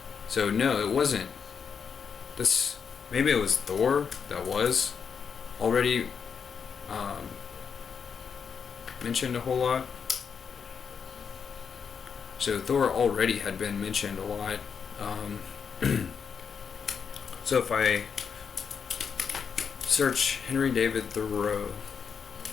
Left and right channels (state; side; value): quieter; right; 6.5 dB